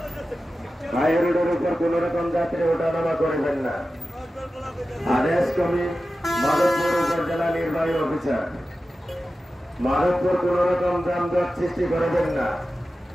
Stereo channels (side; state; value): both; normal; correlation 0.94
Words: হাই রোডের উপর কোন রকম যাত্রী ওঠানামা করবেন না। আদেশ কমি মাধবপুর উপজেলা নির্বাহী অফিসার, মাধবপুর কোন রকম যানজট সৃষ্টি করবেন না।